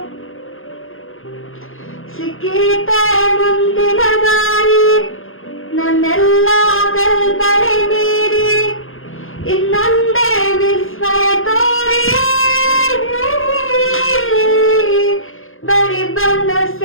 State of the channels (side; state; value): right; late; 0.60 ms